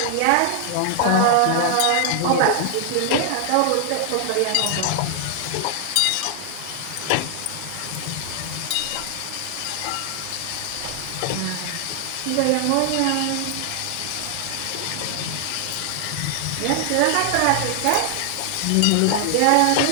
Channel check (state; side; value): different; both; correlation 0.00